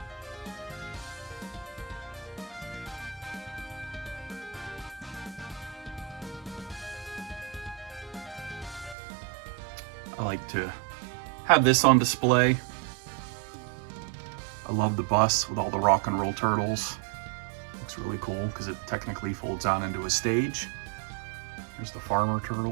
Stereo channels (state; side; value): drops out; left; at 9.0 s